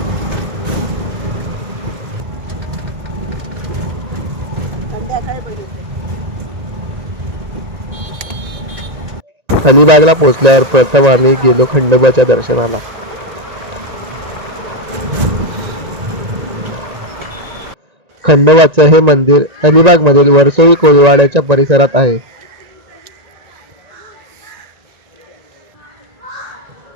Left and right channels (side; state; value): left; late; 1.9 ms